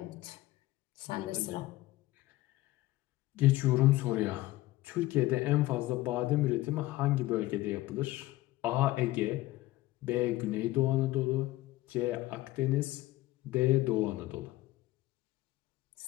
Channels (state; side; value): quieter; right; 17.4 dB